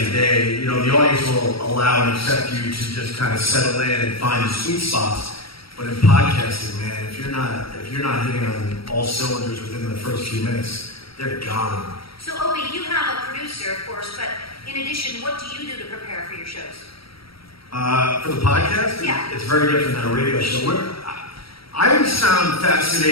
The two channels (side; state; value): right; late; 0.75 ms